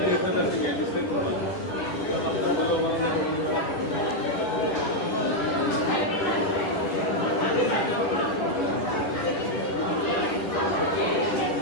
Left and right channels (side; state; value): right; late; 10 ms